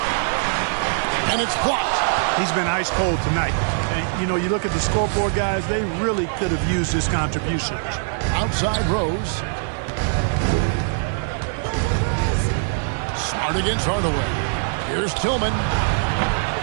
And it's blocked. He's been ice cold tonight. And, you know, you look at the scoreboard, guys, they really could have used his contributions. Outside Rose. Smart against Hardaway. Here's Tillman.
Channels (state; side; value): silent; left; digital silence